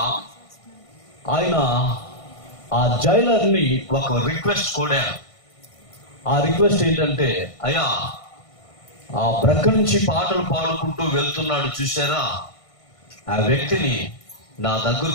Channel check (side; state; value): right; late; 1.5 ms